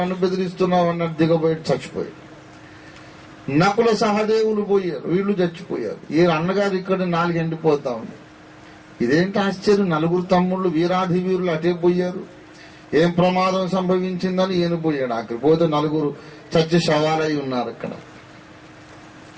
నన్ను బెదిరిస్తున్నావు అన్నాడు. దిగబోయి చచ్చిపోయాడు. నకుల సహదేవులు పోయారు, వీళ్ళు చచ్చిపోయారు. ఈ అన్నగారు ఇక్కడ 4 ఎండిపోతా ఉంది. ఇదేంటి ఆశ్చర్యం, 4 తమ్ముళ్ళు వీరాధి వీరులు అటే పోయారు. ఏం ప్రమాదం సంభవించిందని ఈయన పోయాడు. అక్కడ పోతే 4 చచ్చి శవాలై ఉన్నారు అక్కడ.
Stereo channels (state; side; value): identical; both; correlation 1.00